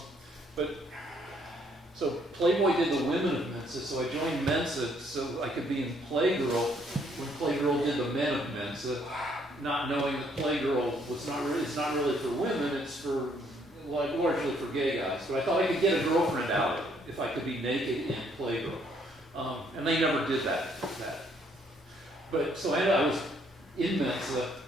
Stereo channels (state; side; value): normal; both; correlation 0.67